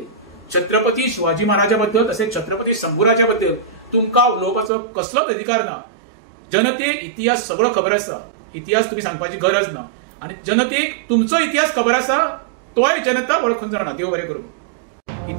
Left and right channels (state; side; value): drops out; left; at 4.7 s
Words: छत्रपती शिवाजी महाराजा बद्दल तसेच छत्रपती शंभूराजा बद्दल तुमका उलोवपाचो कसलोच अधिकार ना. जनतेक इतिहास सगळो खबर आसा. इतिहास तुम्ही सांगपाची गरज ना. आणि जनतेक तुमचो इतिहास खबर आसा, तोय जनता वळखून जाणा. देव बरें करूं.